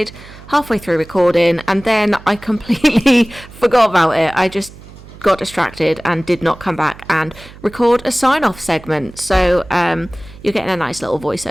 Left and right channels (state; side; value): noise; right; hum, 19 dB below the sound